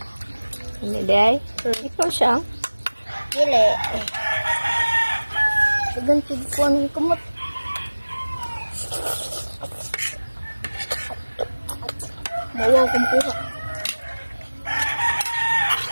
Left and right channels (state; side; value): inverted; both; correlation -1.00